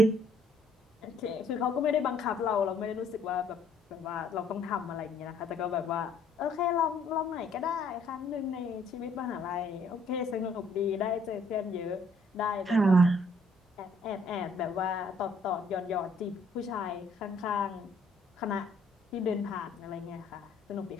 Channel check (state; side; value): normal; both; correlation 0.64